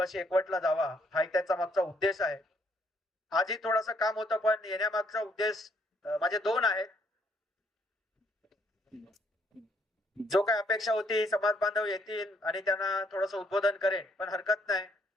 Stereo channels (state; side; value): normal; both; correlation 0.69